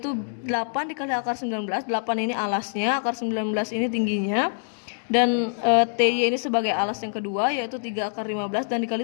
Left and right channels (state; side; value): silent; right; digital silence